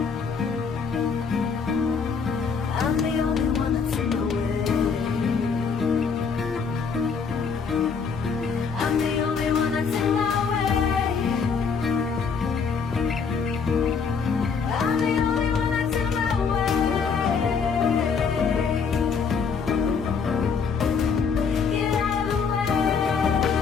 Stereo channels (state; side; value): quieter; right; 5.7 dB